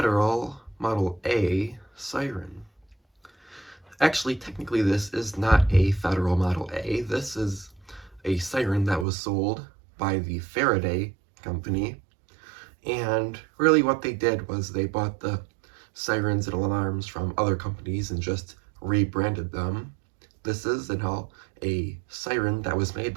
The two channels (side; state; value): left; drops out; at 9.1 s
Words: Model A siren. Actually, technically this is not a Federal Model A. This is a siren that was sold by the Faraday company. And really what they did was they bought the sirens and alarms from other companies and just rebranded them. This is a siren that was made